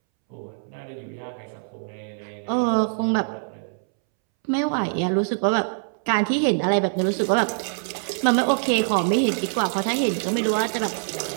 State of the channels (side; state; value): left; silent; 63 dB below the other